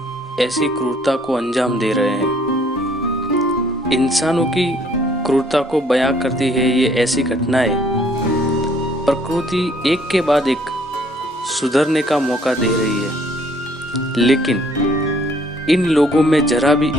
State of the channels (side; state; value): both; normal; correlation 0.62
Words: ऐसी क्रूरता को अंजाम दे रहे हैं। इंसानों की क्रूरता को बयां करती है ये ऐसी घटनाएं। प्रकृति एक के बाद एक सुधरने का मौका दे रही है, लेकिन इन लोगों में जरा भी